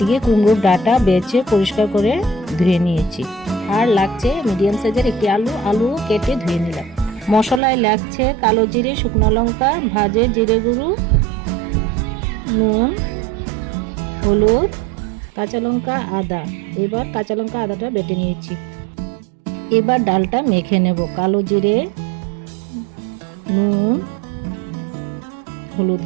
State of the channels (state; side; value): drops out; left; at 7.6 s